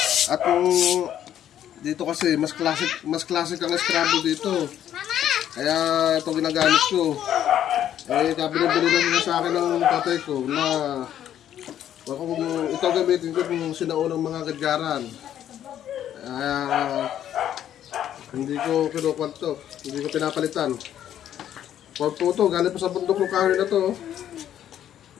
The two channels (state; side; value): quieter; right; 10.7 dB